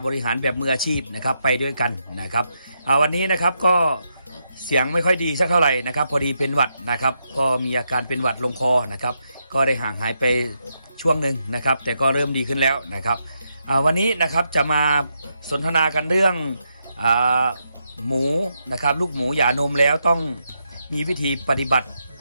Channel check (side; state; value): both; inverted; correlation -0.82